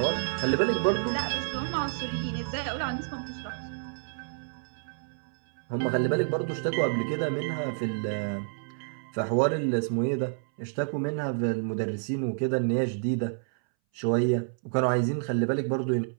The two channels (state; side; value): silent; left; 59 dB below the other